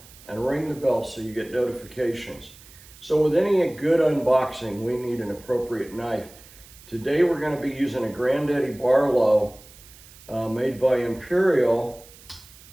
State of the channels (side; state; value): right; noise; hiss, 22 dB below the sound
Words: and ring the bell so you get notifications. So with any good unboxing, we need an appropriate knife. Today we're going to be using a Granddaddy Barlow made by Imperial